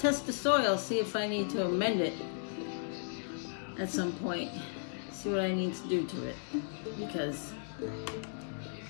test the soil, see if I need to amend it at some point. See what I need to do to it, because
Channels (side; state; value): right; silent; digital silence